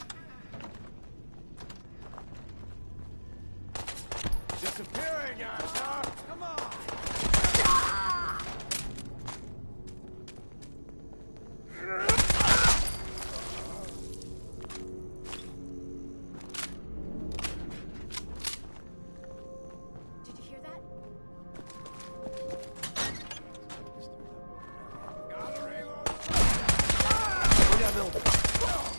Disappearing, asshole! Come on! Did you hear that?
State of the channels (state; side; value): inverted; both; correlation -1.00